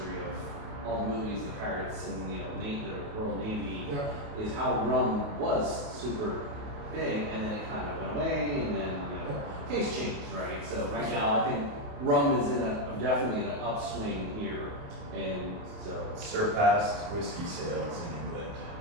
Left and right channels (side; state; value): left; late; 28 ms